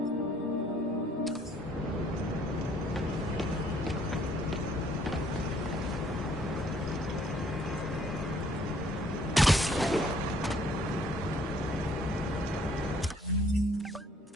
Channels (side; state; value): both; normal; correlation 0.63